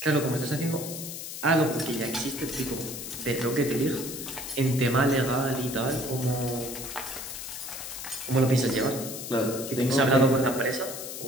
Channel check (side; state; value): left; noise; hiss, 8 dB below the sound